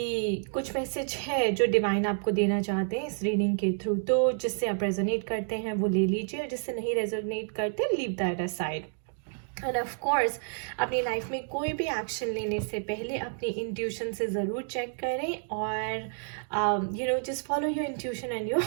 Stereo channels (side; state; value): left; silent; digital silence